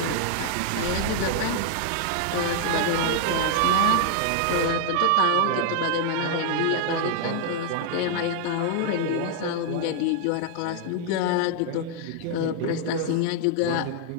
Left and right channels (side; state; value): both; different; correlation 0.00